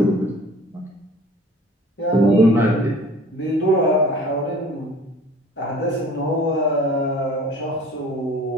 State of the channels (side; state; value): both; normal; correlation 0.47